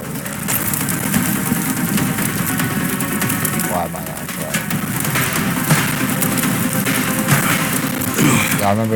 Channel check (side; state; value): both; identical; correlation 1.00